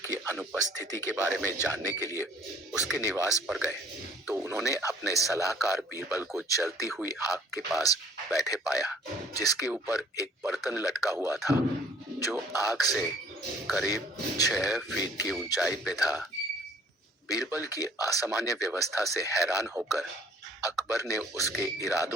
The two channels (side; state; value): both; normal; correlation 0.56